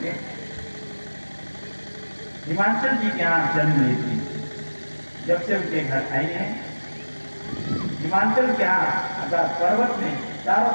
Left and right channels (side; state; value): both; inverted; correlation -1.00